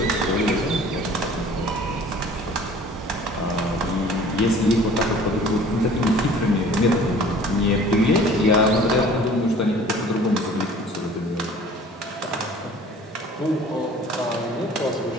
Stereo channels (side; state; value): both; normal; correlation 0.48